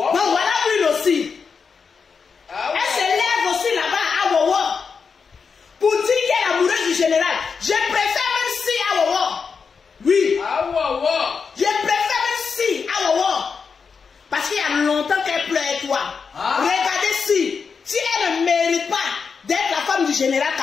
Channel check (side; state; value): right; quieter; 5.6 dB